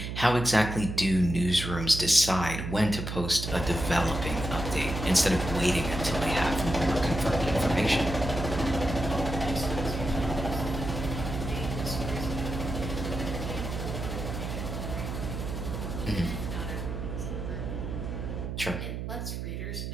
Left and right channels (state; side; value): noise; right; hum, 5 dB below the sound